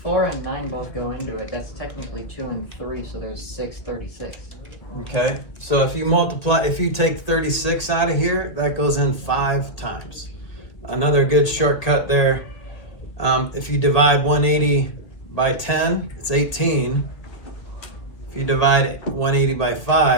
4 and 9 both go into it, that's technically 2 and 3, so there's 6, 36. Okay. So if you take 36 out of here, that goes in 5 times. Another good shortcut there. If you divide 180 by 10, it's 18. If you divide 180 by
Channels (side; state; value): right; late; 2.1 ms